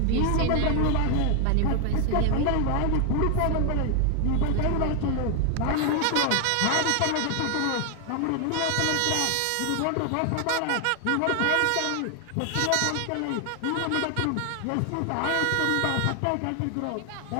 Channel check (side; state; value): both; different; correlation 0.00